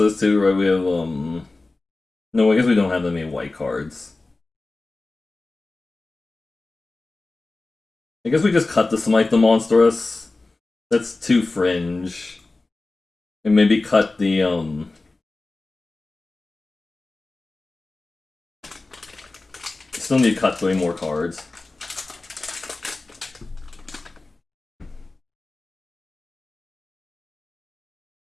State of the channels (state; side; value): quieter; right; 3.3 dB